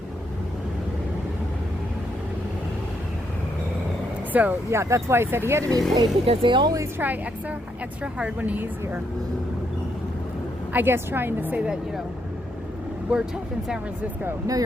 So yeah, that's why I said he had to be paid, because they always try extra hard when he's here. I guess trying to say that, you know, we're tough in San Francisco. No,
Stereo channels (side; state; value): both; normal; correlation 0.77